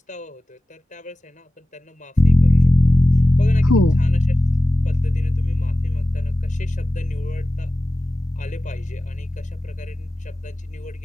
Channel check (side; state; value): both; normal; correlation 0.96